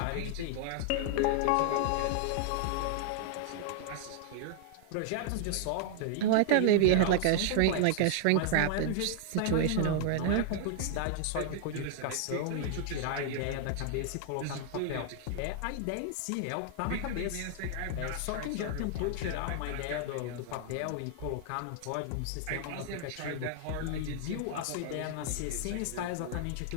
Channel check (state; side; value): different; both; correlation 0.00